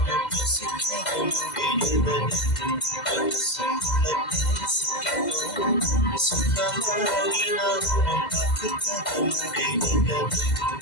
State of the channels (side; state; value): right; late; 2.0 ms